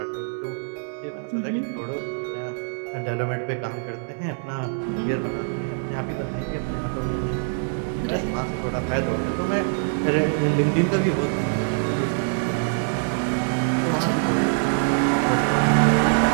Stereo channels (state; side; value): silent; left; 58 dB below the other